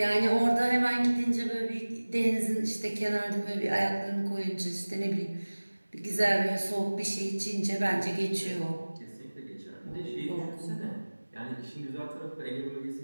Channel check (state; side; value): inverted; both; correlation -1.00